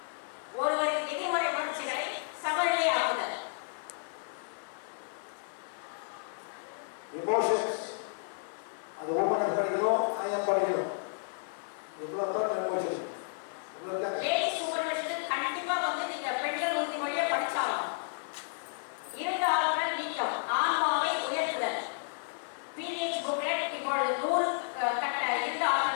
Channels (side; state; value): right; silent; digital silence